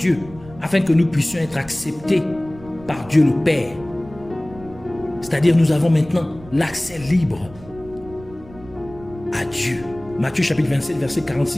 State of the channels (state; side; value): noise; right; rumble, 19 dB below the sound